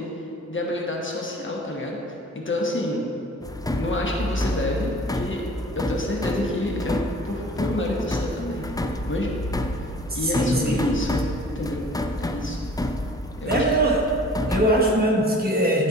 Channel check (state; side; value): normal; both; correlation 0.47